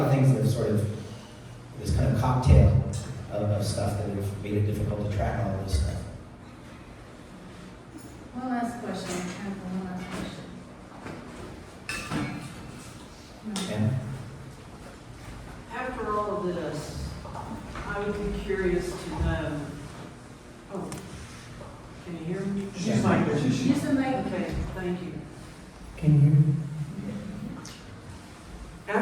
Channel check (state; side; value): identical; both; correlation 1.00